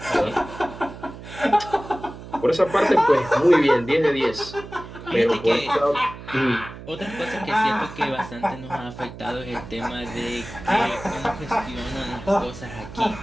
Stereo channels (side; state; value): right; noise; hum, 14 dB below the sound